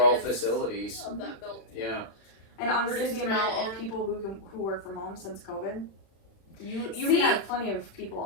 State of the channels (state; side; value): late; right; 36 ms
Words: maintenance facilities. of that building. Yeah, And honestly, reduce the the amount rent of and- people who work from home since COVID, you See- can have plenty of